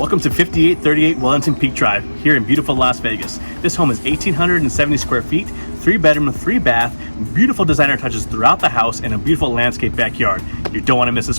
Welcome to 5838 Wellington Peak Drive here in beautiful Las Vegas. This home is 1,870 square feet, 3-bedroom, 3-bath, beautiful designer touches throughout the house, and a beautiful landscape backyard. You don't want to miss this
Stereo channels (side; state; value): both; inverted; correlation -1.00